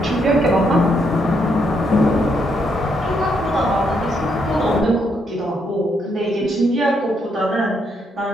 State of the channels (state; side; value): normal; both; correlation 0.76